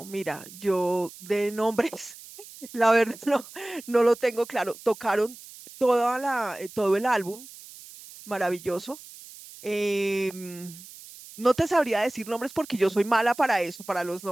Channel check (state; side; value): noise; right; hiss, 17 dB below the sound